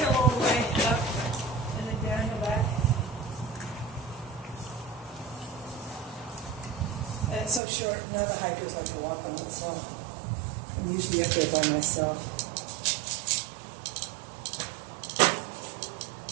all the way up, and then downhill back. And it's so short, now the hikers like to walk on it, so I'm usually up there by myself.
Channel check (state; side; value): drops out; left; at 7.6 s